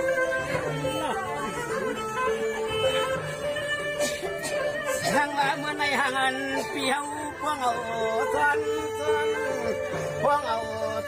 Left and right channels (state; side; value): identical; both; correlation 1.00